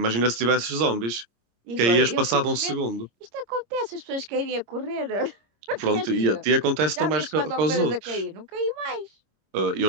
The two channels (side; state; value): left; late; 26 ms